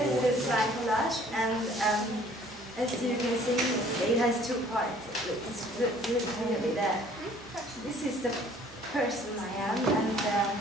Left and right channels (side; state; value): both; normal; correlation 0.56